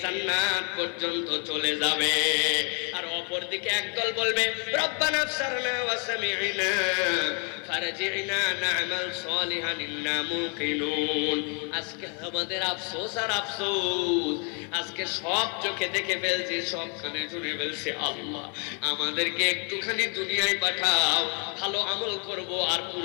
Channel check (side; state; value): right; quieter; 38.0 dB